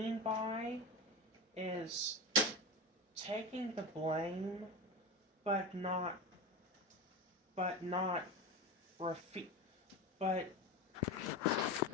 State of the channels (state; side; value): normal; both; correlation 0.23